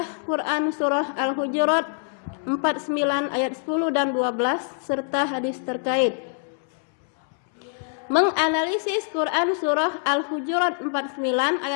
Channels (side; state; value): right; silent; 62 dB below the other